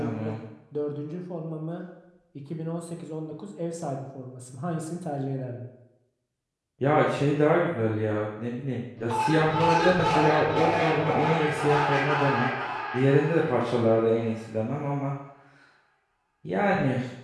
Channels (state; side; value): identical; both; correlation 1.00